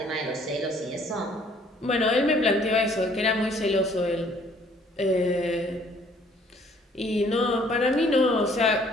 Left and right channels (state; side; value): normal; both; correlation 0.60